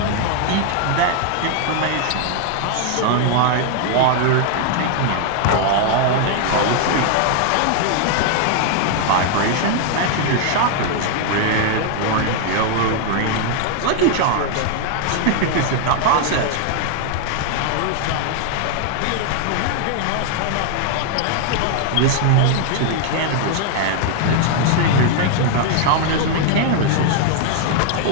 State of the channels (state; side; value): different; both; correlation 0.00